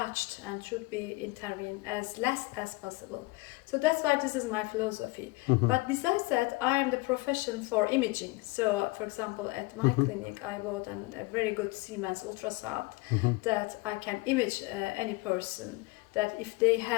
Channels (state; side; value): quieter; right; 23.2 dB